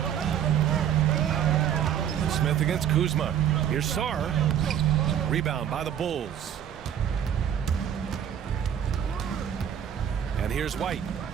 Smith against Kuzma. Here's Sarr. Rebound by the Bulls. And here's White.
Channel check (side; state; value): left; quieter; 9.4 dB